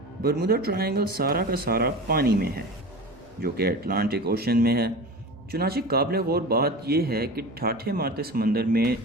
برمودا ٹرائنگل سارا کا سارا پانی میں ہے، جو کہ اٹلانٹک اوشن میں ہے۔ چنانچہ قابل غور بات یہ ہے کہ ٹھاٹھے مارتے سمندر میں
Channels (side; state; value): both; normal; correlation 0.32